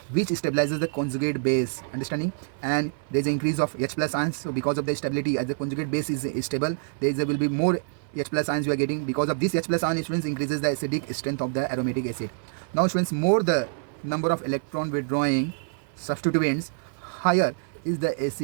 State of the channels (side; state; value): left; silent; 56 dB below the other